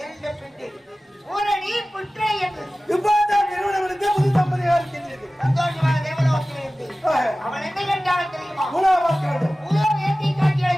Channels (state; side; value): normal; both; correlation 0.97